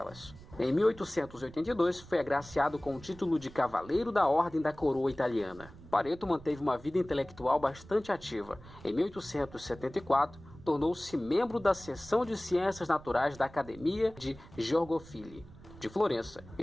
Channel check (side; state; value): right; noise; rumble, 19 dB below the sound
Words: Em 1882, foi agraciado com o título de Cavaleiro da Ordem da Coroa Italiana. Pareto manteve uma vida intelectual bastante ativa. Em 1874, tornou-se membro da seção de Ciências Naturais da Academia de Georgofili, de Florença,